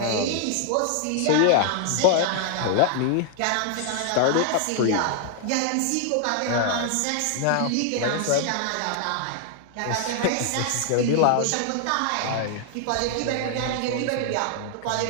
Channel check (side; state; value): both; different; correlation 0.00